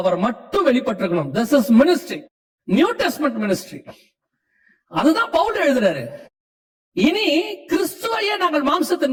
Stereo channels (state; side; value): identical; both; correlation 1.00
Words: மட்டும் வெளிப்பட்டிருக்கணும். This is ministry, new testament ministry. அதுதான் பவுல் எழுதுறாரு. இனி கிறிஸ்துவையே நாங்கள்